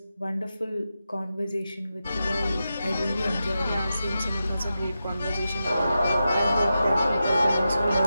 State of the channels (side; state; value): both; inverted; correlation -0.90